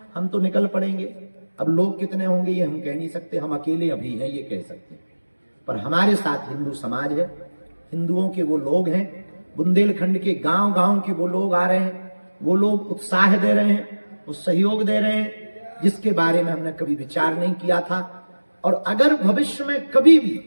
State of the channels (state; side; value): inverted; both; correlation -1.00